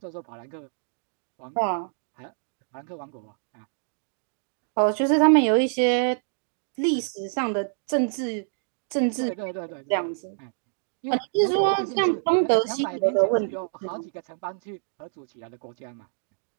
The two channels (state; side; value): silent; left; digital silence